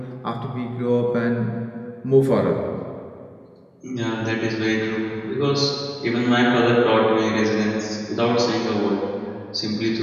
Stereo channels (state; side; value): identical; both; correlation 1.00